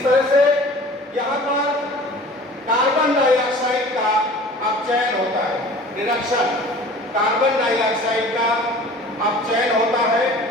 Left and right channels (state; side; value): normal; both; correlation 0.44